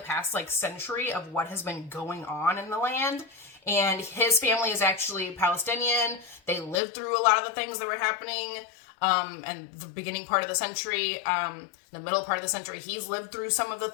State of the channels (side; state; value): right; drops out; at 6.8 s